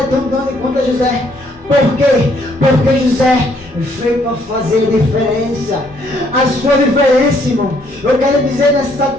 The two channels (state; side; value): normal; both; correlation 0.68